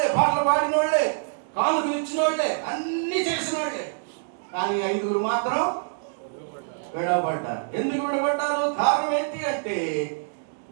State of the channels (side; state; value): left; silent; digital silence